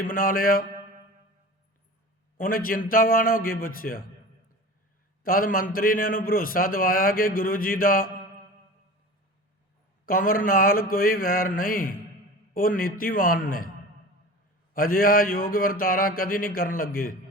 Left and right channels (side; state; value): both; normal; correlation 0.36